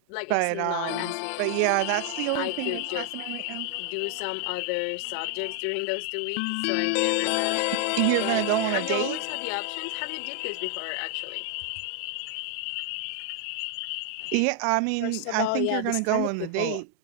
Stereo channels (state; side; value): different; both; correlation 0.00